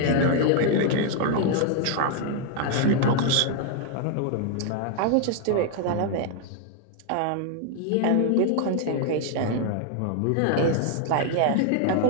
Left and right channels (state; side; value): different; both; correlation 0.00